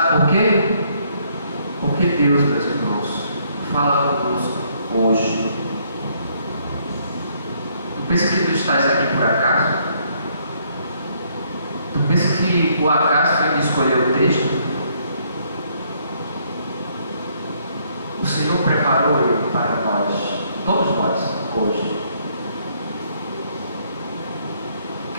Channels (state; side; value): inverted; both; correlation -0.68